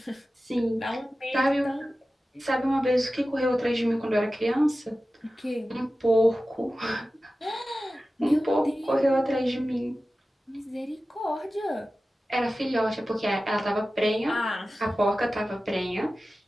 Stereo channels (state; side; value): normal; both; correlation 0.95